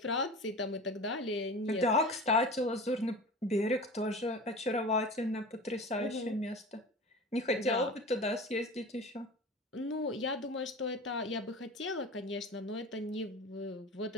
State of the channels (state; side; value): normal; both; correlation 0.34